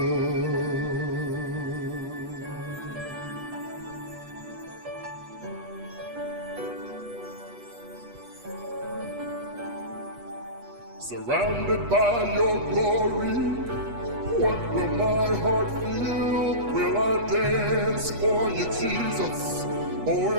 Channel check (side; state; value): left; late; 8.5 ms